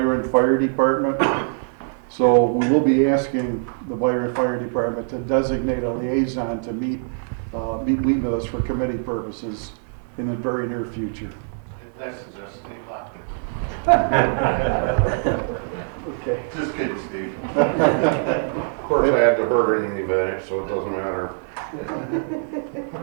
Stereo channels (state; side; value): silent; left; digital silence